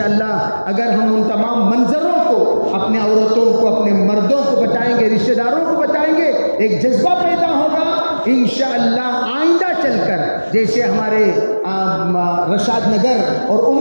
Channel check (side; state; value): both; inverted; correlation -1.00